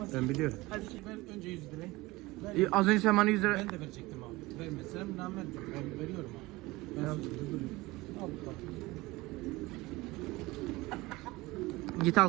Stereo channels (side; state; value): left; quieter; 20.8 dB